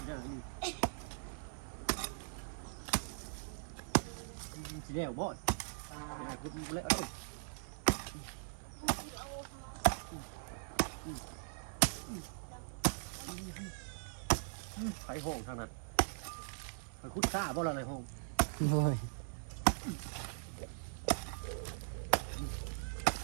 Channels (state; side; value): silent; left; 51 dB below the other